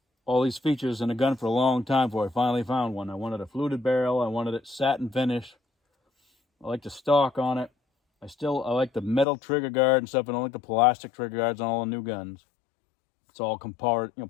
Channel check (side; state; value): right; drops out; at 9.2 s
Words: all these features in a gun for a long time before I finally found one. I wanted a fluted barrel. I wanted it satin finish. I like the stock on it. I like the metal trigger guard and stuff. I don't like the plastic trigger guards on all the new guns. It's all part